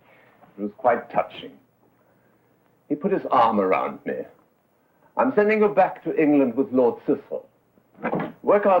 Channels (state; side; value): identical; both; correlation 1.00